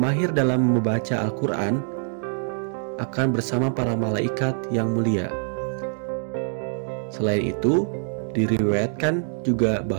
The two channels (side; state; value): left; silent; digital silence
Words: dalam membaca Al-Quran akan bersama para malaikat yang mulia. Selain itu, diriwayatkan juga